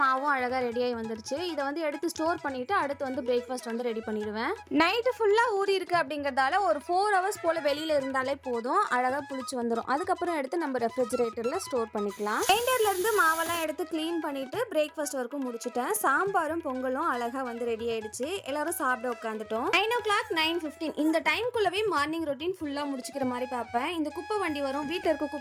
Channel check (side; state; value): both; identical; correlation 1.00